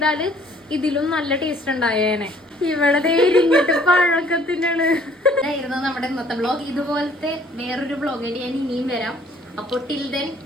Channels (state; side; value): normal; both; correlation 0.59